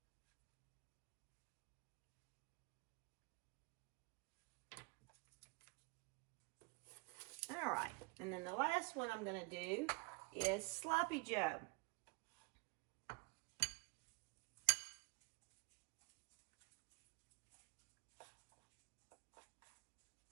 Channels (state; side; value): quieter; left; 28.5 dB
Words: All right, and then the last one I'm gonna do is Sloppy Joe.